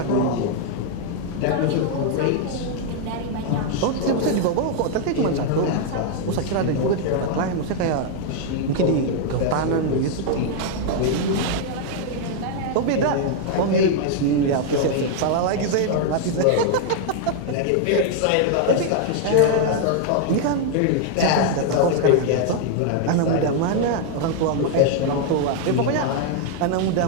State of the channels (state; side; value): different; both; correlation 0.00